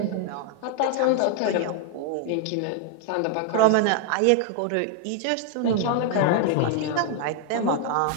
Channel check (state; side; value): different; both; correlation 0.00